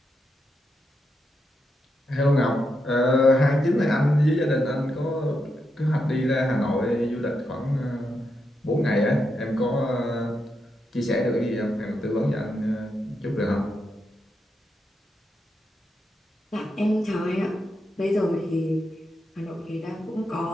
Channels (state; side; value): normal; both; correlation 0.84